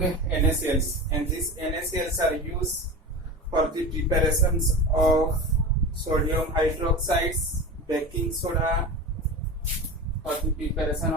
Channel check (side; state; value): both; normal; correlation 0.29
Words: NaCls, and these NaCls are used for the preparations of sodium hydroxides, baking soda for the preparation